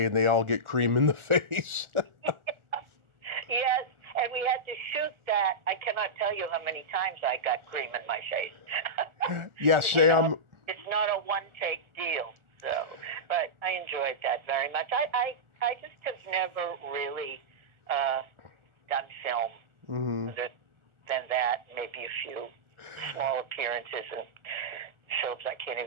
they all get cream in the face. Yes, and we had to shoot that. I cannot tell you how many times I got cream in my face. Yeah, Sam. It's not a one-take deal, so, but I enjoyed that very much. I just have never really done film other than that, maybe a few small appearances in shows I can't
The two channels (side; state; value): left; late; 1.4 ms